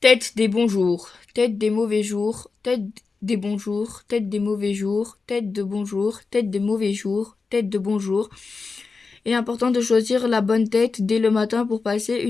Tête des bons jours, tête des mauvais jours, tête des bons jours, tête des mauvais jours, tête de bons jours, tête des mauvais jours, tête de bons jours. Il est important de choisir la bonne tête dès le matin pour passer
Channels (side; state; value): right; quieter; 4.4 dB